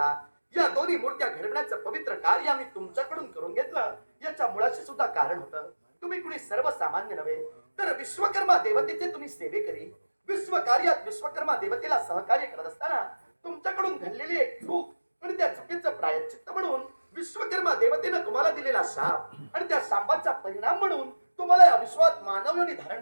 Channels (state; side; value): inverted; both; correlation -1.00